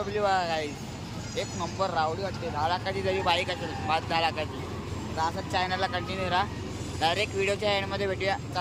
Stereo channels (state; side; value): identical; both; correlation 1.00